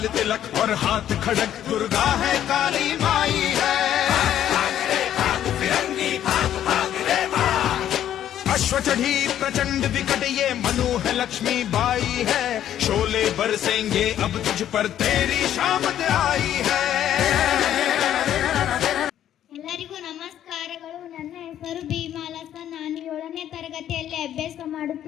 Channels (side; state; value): right; quieter; 11.0 dB